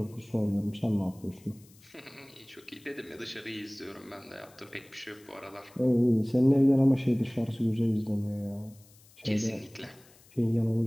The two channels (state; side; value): noise; left; hiss, 27 dB below the sound